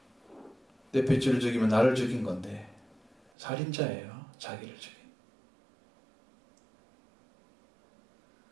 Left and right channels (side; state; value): left; drops out; at 3.3 s